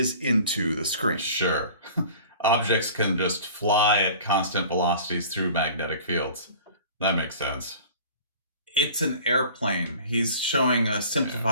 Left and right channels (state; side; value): inverted; both; correlation -0.44